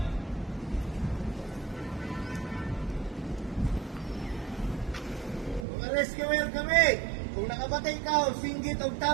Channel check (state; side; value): drops out; left; at 5.7 s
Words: Mga rescuer kami. Kung nakabatay ka o singgit o